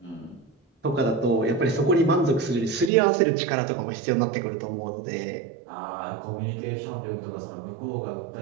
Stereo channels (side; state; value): left; drops out; at 2.9 s